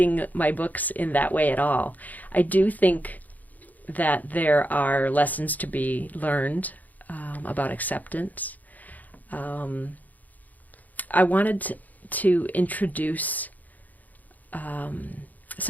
my books in that way at all. I do think that there are lessons to be learned about acceptance. I wanted to introduce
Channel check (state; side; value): late; right; 0.080 ms